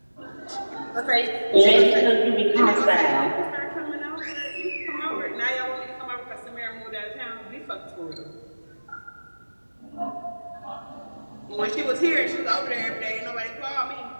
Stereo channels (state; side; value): inverted; both; correlation -1.00